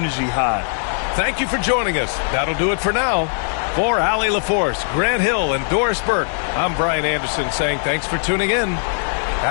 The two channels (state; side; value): silent; right; 66 dB below the other